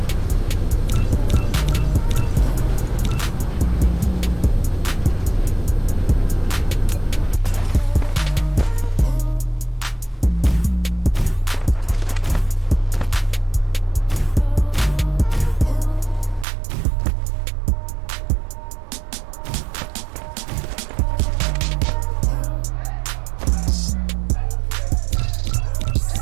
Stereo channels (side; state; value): left; drops out; at 16.4 s